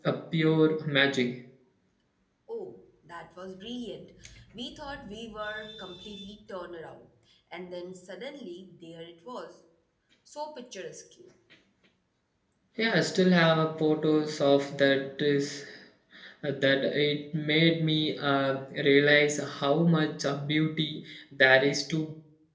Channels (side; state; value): both; identical; correlation 1.00